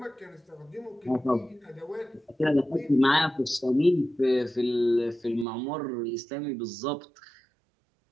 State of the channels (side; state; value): left; drops out; at 5.5 s